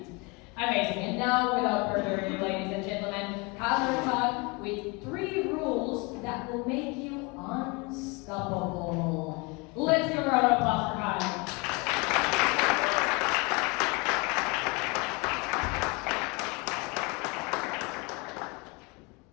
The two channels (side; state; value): right; quieter; 28.3 dB